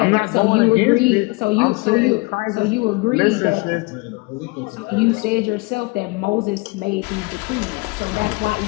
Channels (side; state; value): right; quieter; 26.5 dB